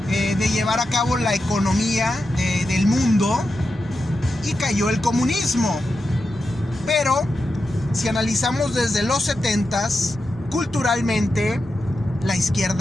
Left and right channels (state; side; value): normal; both; correlation 0.89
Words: de llevar a cabo la economía del mundo, y cayó el comunismo. Pero si analizamos desde los 70s, culturalmente la